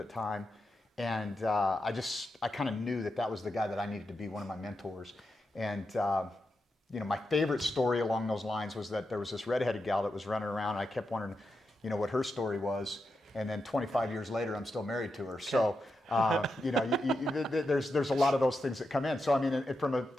the time. And I kind of knew that was the guy that I needed to be one of my mentors. And my favorite story along those lines was that there was this redheaded gal that was running around, and I kept wondering, what her story was. And then 25 years later, I'm still married to her. So, there's a lot of those things that come in. So, I mean,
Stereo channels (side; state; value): both; normal; correlation 0.87